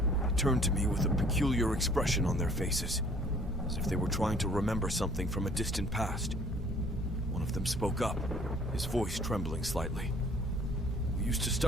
They turned to me with a peculiar expression on their faces, as if they were trying to remember something from a distant past. One One of them spoke up, his voice trembling slightly. "We used to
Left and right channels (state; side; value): normal; both; correlation 0.56